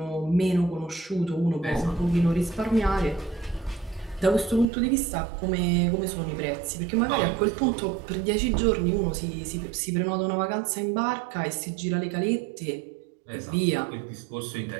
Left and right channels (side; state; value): left; drops out; at 4.7 s